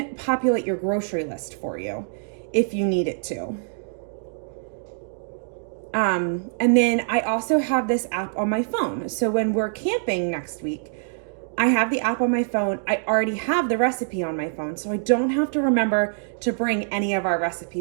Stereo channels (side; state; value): left; silent; digital silence